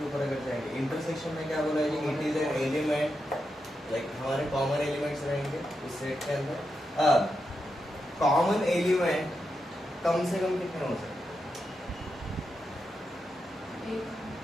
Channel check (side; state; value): both; normal; correlation 0.86